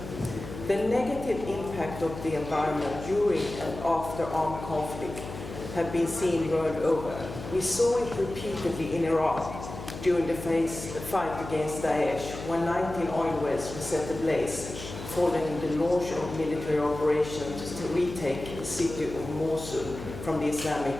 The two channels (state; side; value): noise; left; hum, 11 dB below the sound